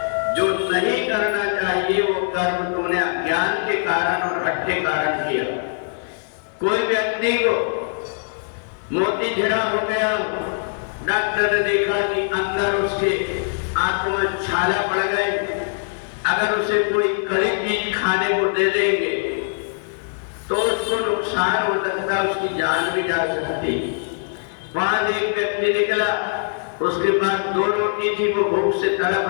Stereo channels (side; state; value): right; silent; digital silence